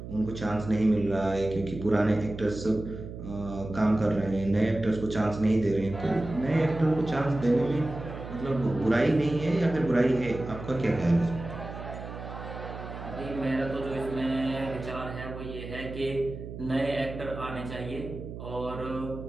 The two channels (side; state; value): right; noise; hum, 10 dB below the sound